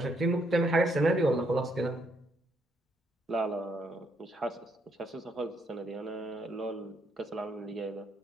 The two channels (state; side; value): normal; both; correlation 0.73